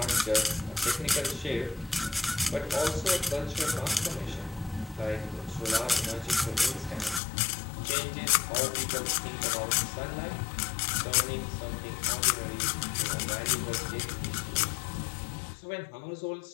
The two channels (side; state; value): right; drops out; at 7.2 s